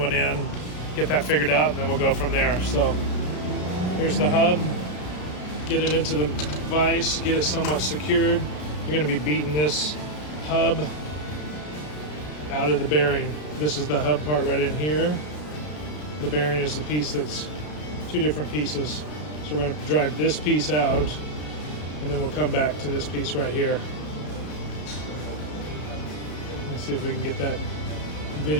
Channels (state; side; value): late; right; 33 ms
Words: in, get that figured out, and then we'll go from there. So here's the hub. Get it into the vise, get it somewhat secured. You're going to be beating this hub out of the bearing. This is the hub part right in here. The bearing is the piece that's two different pieces. So we're going to drive this piece out, and then we'll come back to this piece right here. Let's see if we can get that